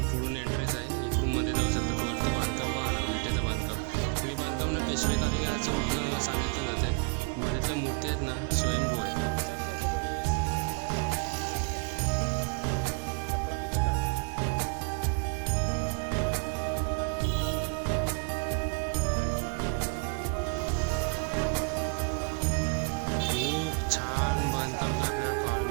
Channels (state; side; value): quieter; left; 36.1 dB